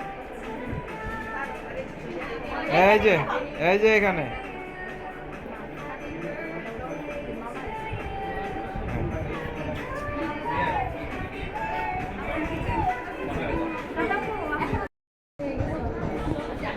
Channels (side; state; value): both; identical; correlation 1.00